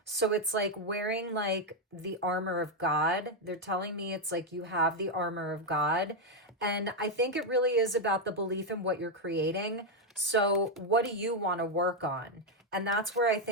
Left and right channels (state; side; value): normal; both; correlation 0.02